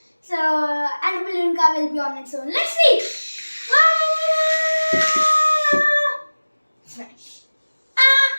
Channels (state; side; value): inverted; both; correlation -1.00